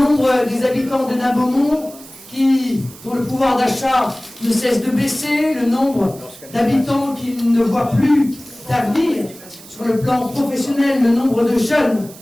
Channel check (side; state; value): right; noise; hiss, 19 dB below the sound